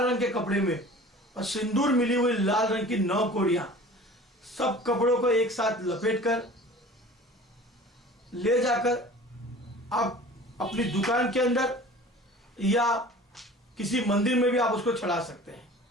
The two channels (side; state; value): both; normal; correlation 0.42